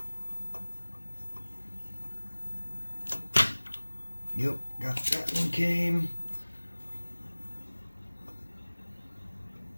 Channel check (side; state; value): both; inverted; correlation -1.00